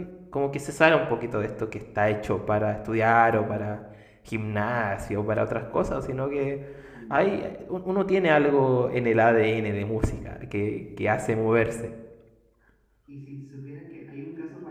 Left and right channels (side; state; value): both; identical; correlation 1.00